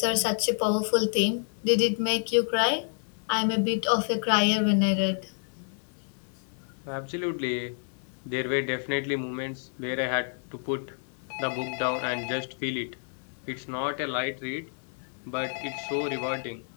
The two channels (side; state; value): right; silent; 59 dB below the other